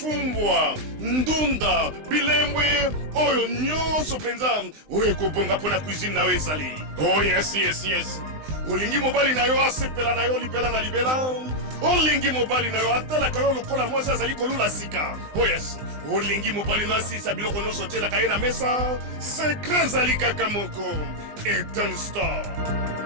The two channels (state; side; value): late; left; 20 ms